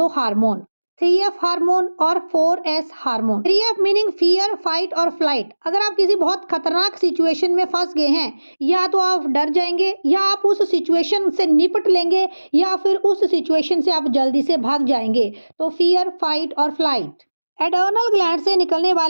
हार्मोन, 3F हार्मोन और 4S hormone. 3F meaning fear, fight और फ्लाइट। अगर आप किसी बहुत खतरनाक सिचुएशन में फंस गए हैं, या तो आप डर जाएंगे या आप उस सिचुएशन से निपट लेंगे या फिर उस सिचुएशन से आप जल्दी से भाग जाएंगे। तो फियर, फाइट और फ्लाइट। एडर्नल ग्लैंड से निकलने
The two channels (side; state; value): both; inverted; correlation -1.00